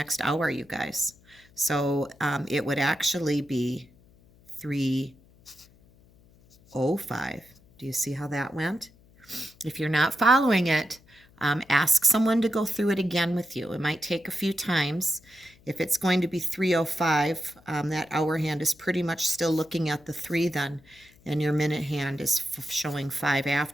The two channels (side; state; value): left; noise; hum, 28 dB below the sound